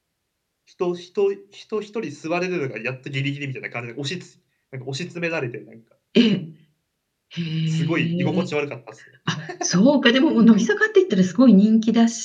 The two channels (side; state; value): both; identical; correlation 1.00